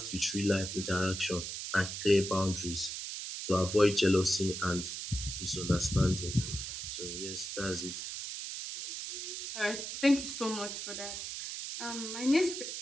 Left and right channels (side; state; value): right; noise; hiss, 6 dB below the sound